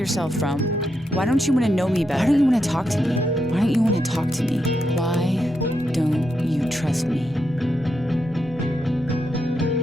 from? Why don't you want to know me better? Why don't you want to talk to me? Why don't you want to talk to me? Why don't you trust me?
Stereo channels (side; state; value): both; normal; correlation 0.83